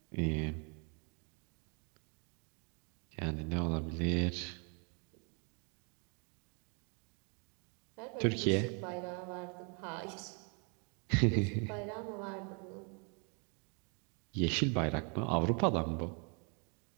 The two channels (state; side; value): quieter; left; 36.3 dB